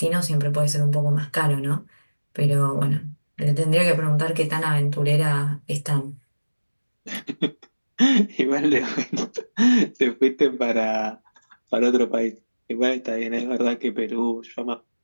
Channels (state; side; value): inverted; both; correlation -1.00